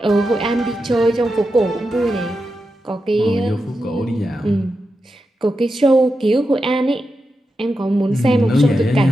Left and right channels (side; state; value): both; normal; correlation 0.89